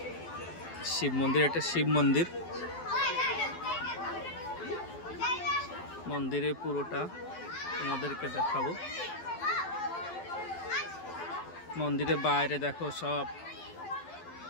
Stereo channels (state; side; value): late; right; 12 ms